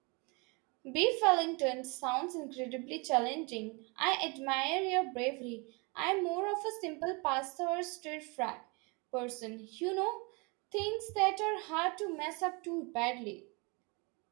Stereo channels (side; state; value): left; quieter; 29.9 dB